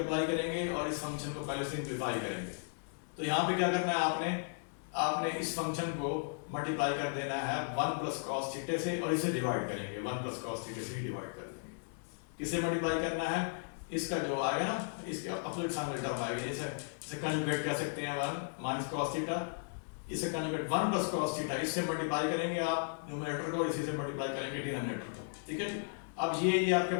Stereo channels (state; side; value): silent; right; digital silence